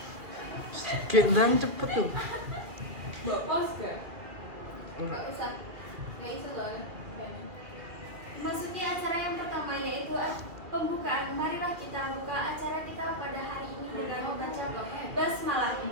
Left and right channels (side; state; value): left; late; 2.2 ms